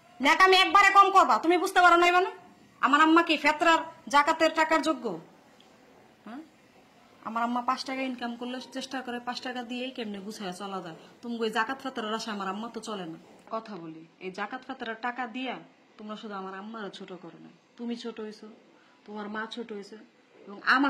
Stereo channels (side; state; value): both; identical; correlation 1.00